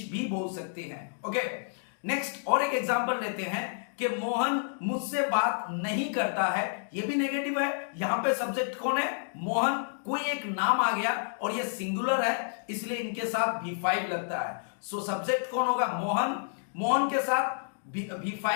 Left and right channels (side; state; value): right; silent; digital silence